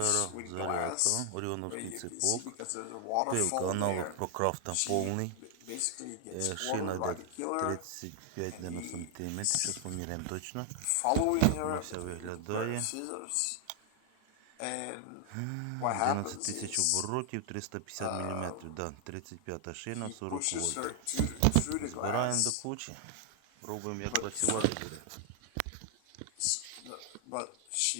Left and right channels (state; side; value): different; both; correlation 0.00